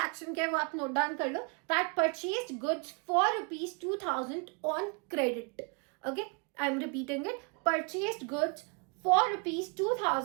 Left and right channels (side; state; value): left; quieter; 35.4 dB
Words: क्या है वो आप नोट डाउन कर लो, that purchase goods for ₹2,000 on credit. Okay, I am repeating it, purchase goods for